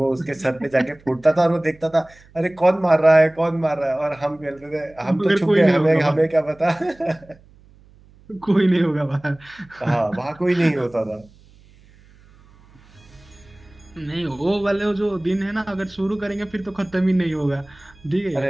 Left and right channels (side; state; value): right; noise; hum, 27 dB below the sound